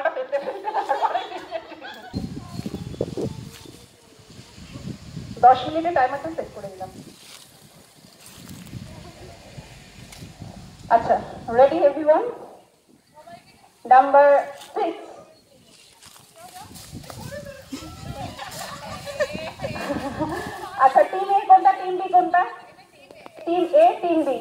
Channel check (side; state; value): both; identical; correlation 1.00